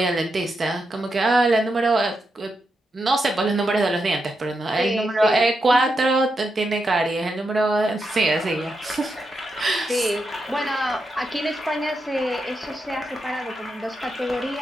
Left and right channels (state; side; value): normal; both; correlation 0.85